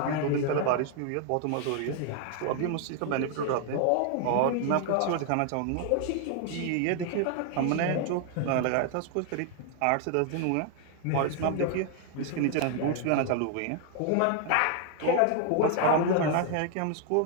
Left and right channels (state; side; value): different; both; correlation 0.00